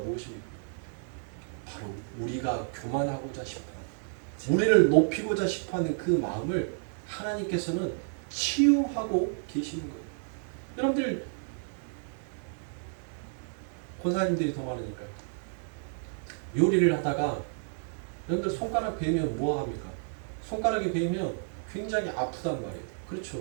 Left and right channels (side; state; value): left; silent; 55 dB below the other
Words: 바로 우리가 교만하고자 싶어, 우리를 높이고자 싶어하는 그 마음을 하나님께서는 치유하고 계시는 거예요. 여러분들 권사님들이 더 많으니까 요리를 하다가 여러분들 손가락 베이면 뭐 합니까? 손가락이 베이면 굉장히 아프단 말이에요. 그렇죠?